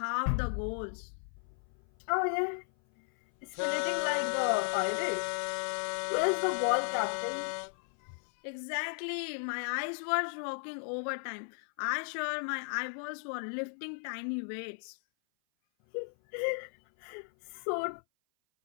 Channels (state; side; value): silent; right; 54 dB below the other